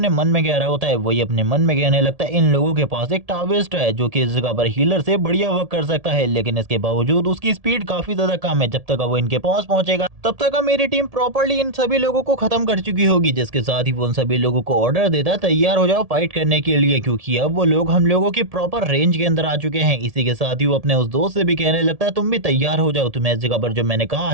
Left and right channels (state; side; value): late; left; 1.7 ms